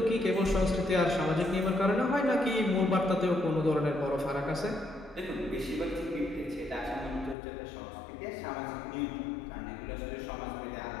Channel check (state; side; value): drops out; right; at 7.4 s